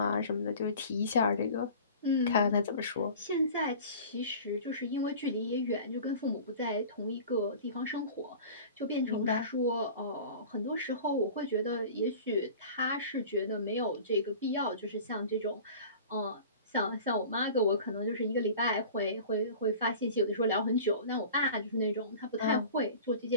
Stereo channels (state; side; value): inverted; both; correlation -0.40